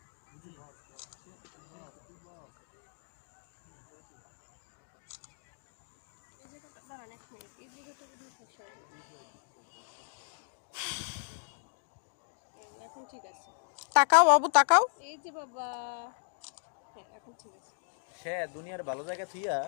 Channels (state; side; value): silent; right; digital silence